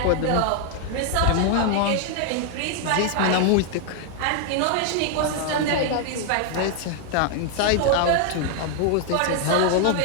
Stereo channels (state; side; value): different; both; correlation 0.00